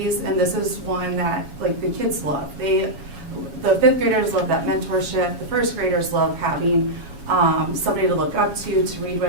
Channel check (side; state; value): left; late; 7.2 ms